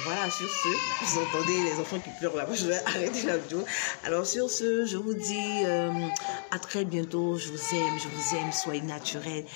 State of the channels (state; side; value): silent; right; 57 dB below the other